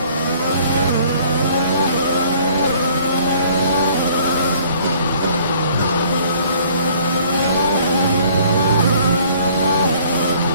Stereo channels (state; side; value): inverted; both; correlation -0.56